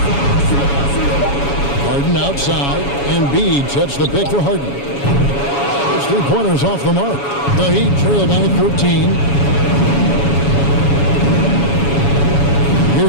Harden outside. Embiid sets the pick for Harden. Those three-pointers off the mark. The Heat trail by 13.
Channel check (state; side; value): late; right; 7.1 ms